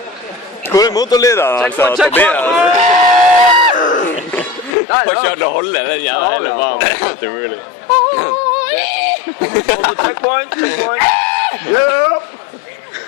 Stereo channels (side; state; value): right; drops out; at 4.8 s